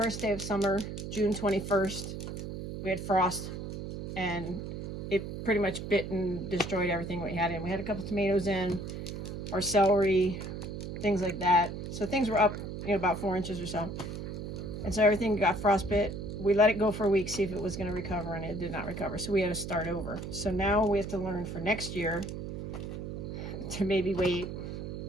day of summer, June 21st, we had frost and it pretty much bit and destroyed everything we had in. We had a couple tomatoes in, our celery, things like that. So things were up, about 4 inches or so. And so everything got frostbit. We let it go for a week, see if it was going to recover, and it did not recover. So we had to start over. So now we have to learn for next year to maybe wait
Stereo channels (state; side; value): noise; right; hum, 7 dB below the sound